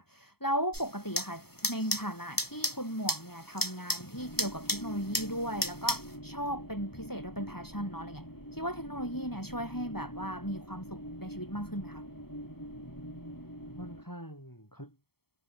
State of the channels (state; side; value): late; right; 0.96 ms